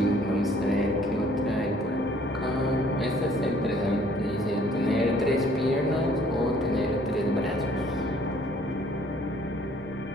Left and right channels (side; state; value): both; normal; correlation 0.59